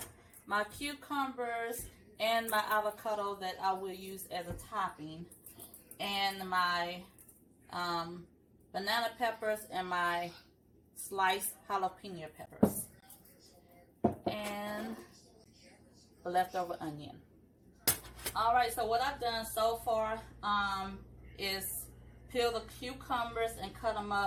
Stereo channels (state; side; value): identical; both; correlation 1.00